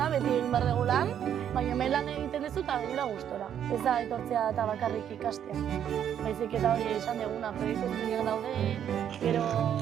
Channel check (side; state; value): left; quieter; 9.5 dB